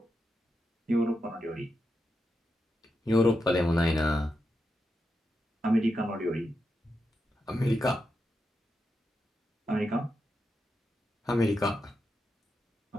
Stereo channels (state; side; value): normal; both; correlation 0.86